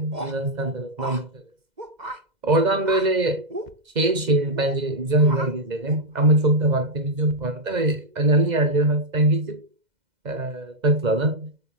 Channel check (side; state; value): left; late; 2.0 ms